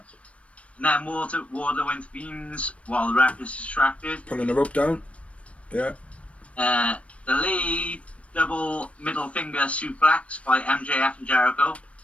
And then Wardlow intervenes while the ref is distracted. Pulling the rope down. Yeah. The lead double middle finger suplex by MJF and Jericho.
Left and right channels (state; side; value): late; right; 0.063 ms